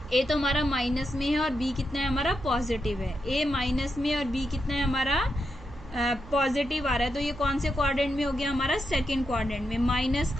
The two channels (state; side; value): noise; right; hum, 18 dB below the sound